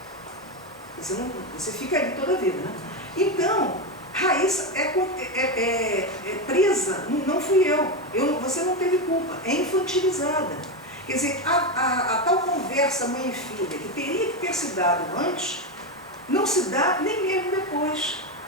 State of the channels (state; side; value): normal; both; correlation 0.12